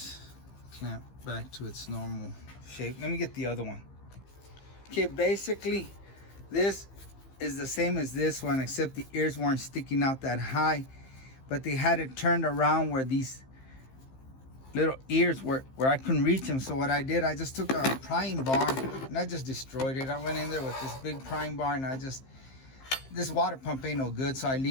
clamp back to its normal shape. Let me get the other one. Okay, basically this is the same as this one, except the ears weren't sticking out that high, but they had it turned around where these little ears were, where I couldn't reach them. So what I did, I just took a prying bar and I just destroyed it. I went in there with this big prying bar and this water pump ain't no good, so I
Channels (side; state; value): right; late; 15 ms